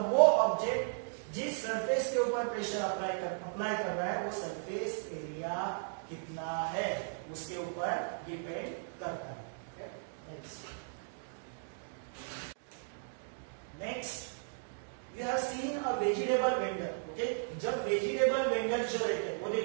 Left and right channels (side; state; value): left; silent; digital silence